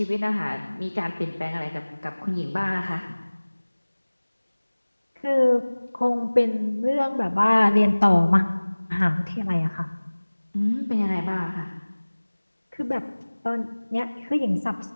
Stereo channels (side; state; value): both; inverted; correlation -1.00